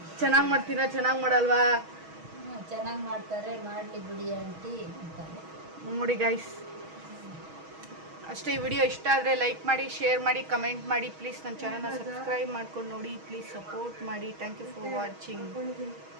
ಚೆನ್ನಾಗಿ ಮಾಡ್ತೀನ ಚೆನ್ನಾಗಿ ಮಾಡಲ್ವಾ? ಚೆನ್ನಾಗಿ ಮಾಡ್ತಾರೆ, ಮಾಡಲಿ ಬಿಡಿ ಆಂಟಿ ಅಂತಾರೆ. ನೋಡಿ ಗೈಸ್, ಅಷ್ಟೇ. ಈ ವಿಡಿಯೋ ಇಷ್ಟ ಆದರೆ ಲೈಕ್ ಮಾಡಿ, ಶೇರ್ ಮಾಡಿ, ಕಮೆಂಟ್ ಮಾಡಿ. ಪ್ಲೀಸ್ ನನ್ನ ಚಾನಲ್ನ ಸಬ್ಸ್ಕ್ರೈಬ್ ಮಾಡ್ಕೊಂಡು ನೋಡಿ. ಪ್ಲೀಸ್ ಸಪೋರ್ಟ್ ಮಾಡಿ. Thank you for watching.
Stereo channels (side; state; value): left; late; 6.3 ms